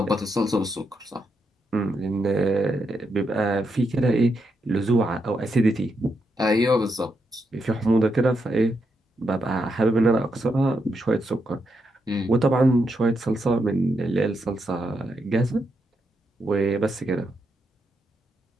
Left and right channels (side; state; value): both; normal; correlation 0.82